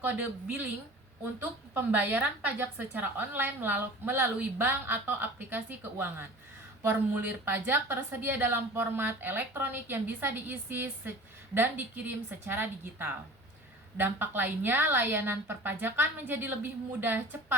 kode billing untuk pembayaran pajak secara online melalui bank atau aplikasi keuangan. Formulir pajak tersedia dalam format elektronik yang bisa diisi dan dikirim secara digital. Dampak lainnya, layanan perpajakan menjadi lebih mudah,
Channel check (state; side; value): normal; both; correlation 0.40